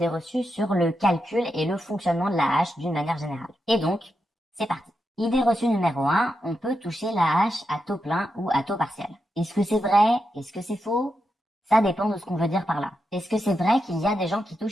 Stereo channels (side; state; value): both; normal; correlation 0.86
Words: reçues sur le calcul et le fonctionnement de l'AAH d'une manière générale. Et donc, c'est parti. Idée reçue numéro 1, on peut toucher l'AAH à taux plein ou à taux partiel. Est-ce que c'est vrai? Est-ce que c'est faux? Ça dépend de ce qu'on veut dire par là. Est-ce que c'est vrai qu'il y a des gens qui